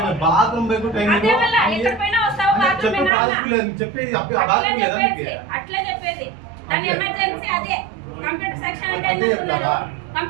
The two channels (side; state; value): left; drops out; at 3.1 s